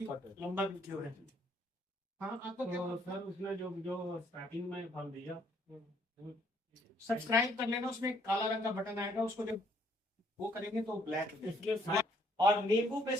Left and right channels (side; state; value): both; normal; correlation 0.67